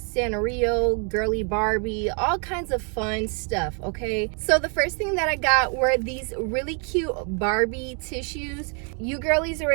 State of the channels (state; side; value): quieter; left; 39.0 dB